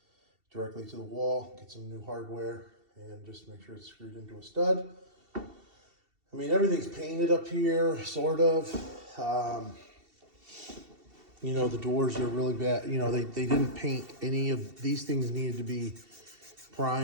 directly to the wall, get some new hardware, and just make sure it's screwed into a stud. I mean, everything's painted up here, sort of. You know, the doors are really bad. You know, they didn't paint any of these things. Needed to be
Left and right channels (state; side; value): late; left; 2.7 ms